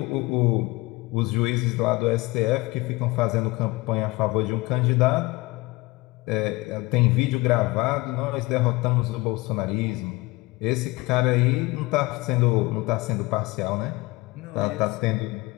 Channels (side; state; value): right; quieter; 22.0 dB